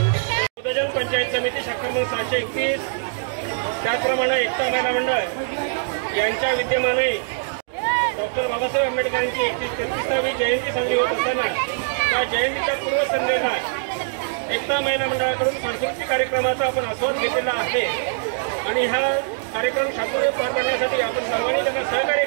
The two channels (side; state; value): left; silent; digital silence